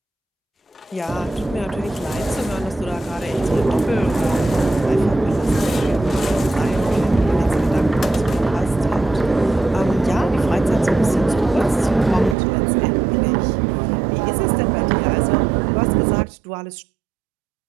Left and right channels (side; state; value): left; drops out; at 12.4 s